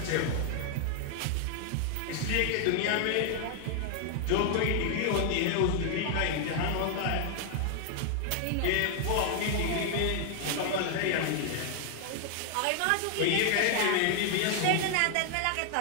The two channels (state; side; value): different; both; correlation 0.00